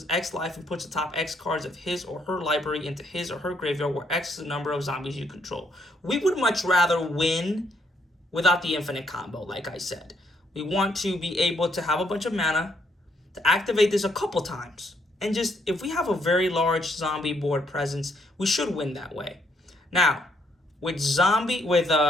X life and puts the top X cards of his or her library into his or her graveyard where X is the number of zombies you control. We would much rather win without the infinite combo, like I said. We want to be able to have a bunch of mana, to activate this a couple times. And just, if we have a very large zombie board presence, we should win that way. Now, with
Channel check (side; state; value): both; normal; correlation 0.72